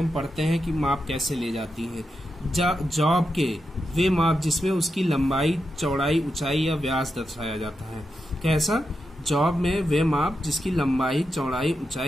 पढ़ते हैं कि माप कैसे ले जाती है। जॉब के वे माप जिसमें उसकी लंबाई, चौड़ाई, ऊंचाई या व्यास दर्शाया जाता है। कैसा? जॉब में वे माप जिसकी लंबाई, चौड़ाई,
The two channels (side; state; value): both; normal; correlation 0.87